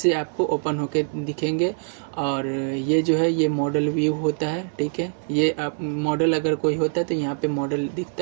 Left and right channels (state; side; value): silent; left; digital silence